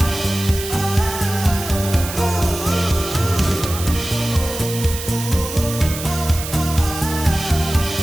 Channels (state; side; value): noise; right; hiss, 8 dB below the sound